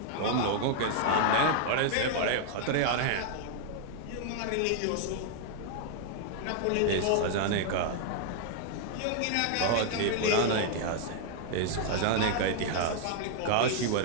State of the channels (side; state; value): both; different; correlation 0.00